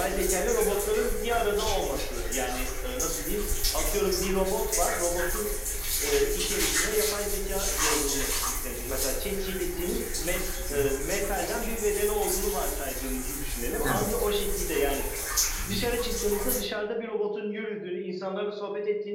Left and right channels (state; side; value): identical; both; correlation 1.00